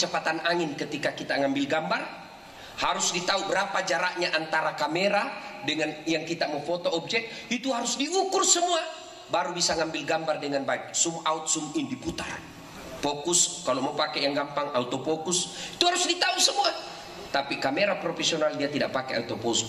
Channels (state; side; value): identical; both; correlation 1.00